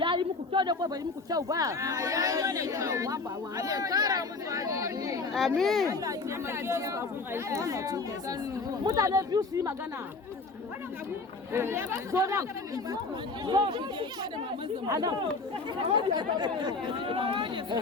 yi muku kyau da ko bai yi muku kyau ba. Amin. Mutane biyu su yi magana. Zo nan. Zo. Anan.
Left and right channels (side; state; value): right; quieter; 3.8 dB